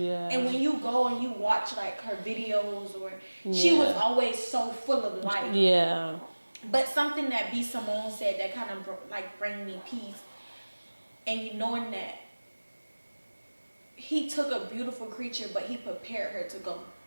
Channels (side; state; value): both; inverted; correlation -1.00